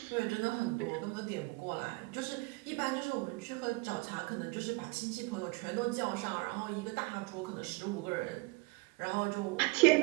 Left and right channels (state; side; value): quieter; left; 25.7 dB